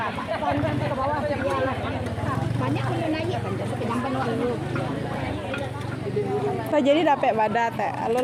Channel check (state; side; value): identical; both; correlation 1.00